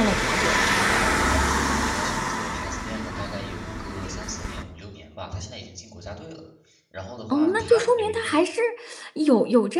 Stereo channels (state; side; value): identical; both; correlation 1.00